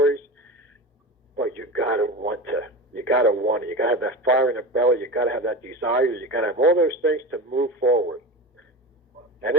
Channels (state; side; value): normal; both; correlation 0.28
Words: But you got to want to. You got to want it. You got to have that fire in the belly. You got to have that desire. You got to have all those things to move forward. And